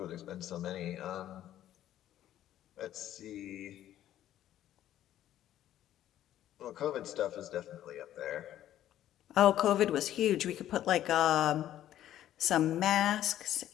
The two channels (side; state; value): right; quieter; 12.3 dB